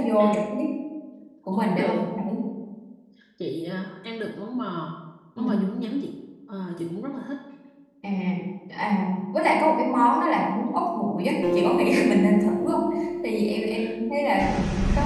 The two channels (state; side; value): identical; both; correlation 1.00